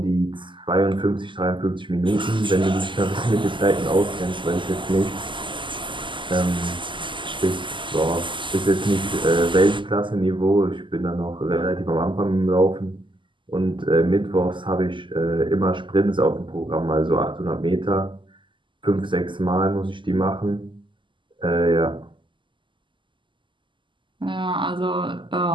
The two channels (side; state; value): left; late; 0.24 ms